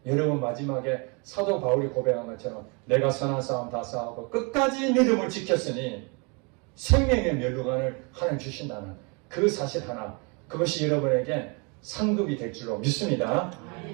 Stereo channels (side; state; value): left; quieter; 32.1 dB